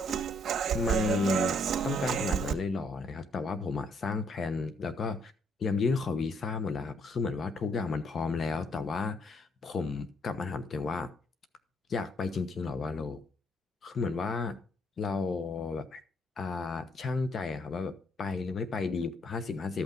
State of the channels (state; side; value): normal; both; correlation 0.69